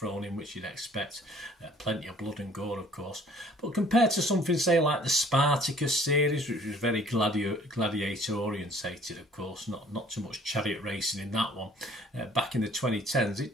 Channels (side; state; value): both; normal; correlation 0.55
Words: which you'd expect. Plenty of blood and gore, of course. But compared to something, say, like the Spartacus series, which was very gladiator-orientated, of course, not too much chariot racing in that one. Back in the 2010s, it